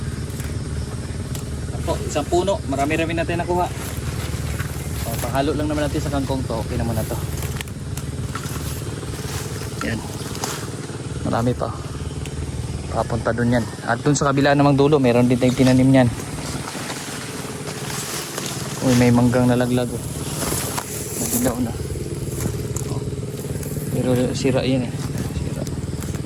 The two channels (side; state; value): both; identical; correlation 1.00